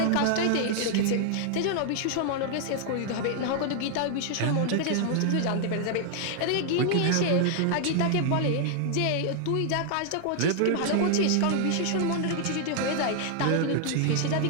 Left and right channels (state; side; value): different; both; correlation 0.00